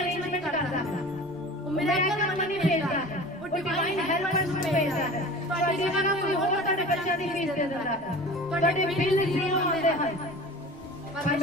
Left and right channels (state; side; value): normal; both; correlation 0.39